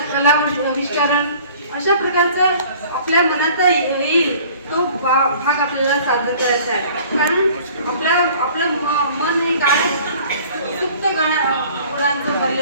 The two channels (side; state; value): both; inverted; correlation -0.50